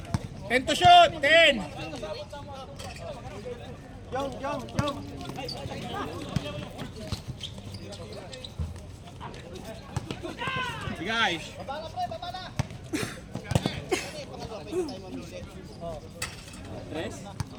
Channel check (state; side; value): identical; both; correlation 1.00